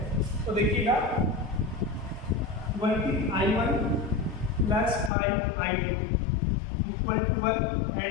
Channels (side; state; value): right; drops out; at 5.1 s